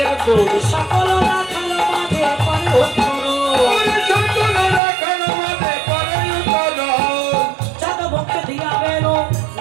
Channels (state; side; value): drops out; left; at 4.8 s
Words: সকল রাখাল মাঝে পরে উত্তর, চাঁদ মুখে দিয়া বেল